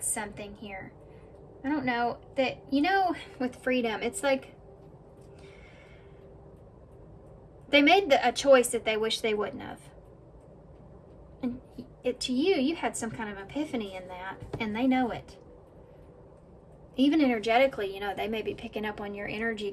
something here. I don't know that, you know, with freedom, it's like they made a choice that they wish they wouldn't have. And to you, you had some kind of epiphany in that, and they know it. Even energetically, you know, they may be picking up on your energy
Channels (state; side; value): identical; both; correlation 1.00